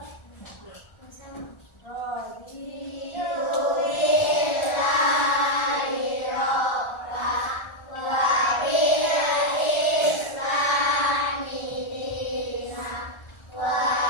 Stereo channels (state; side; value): late; right; 1.4 ms